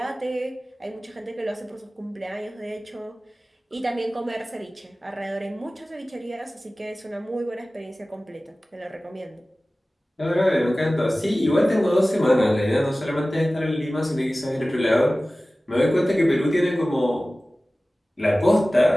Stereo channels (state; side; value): normal; both; correlation 0.97